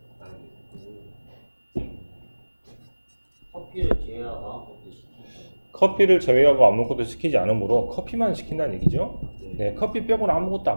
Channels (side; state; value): both; inverted; correlation -1.00